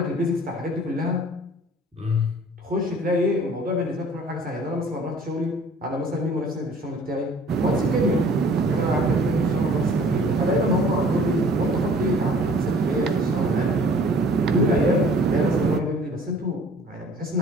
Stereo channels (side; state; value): both; normal; correlation 0.51